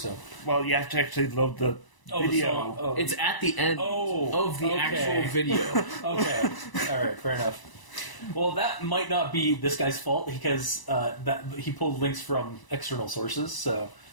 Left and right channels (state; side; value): late; right; 1.0 ms